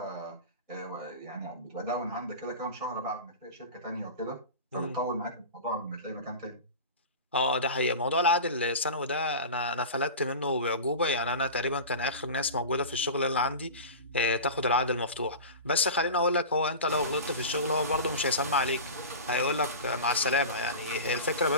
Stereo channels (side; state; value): both; inverted; correlation -0.31